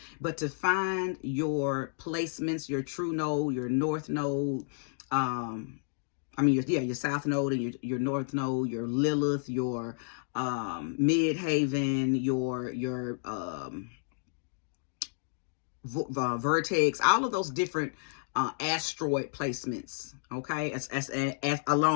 But to find your placements, your true node, your north node, your south node and your north node, your Lilith, your midhaven, your vertex, all of those different asteroid placements, okay, as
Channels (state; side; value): silent; right; digital silence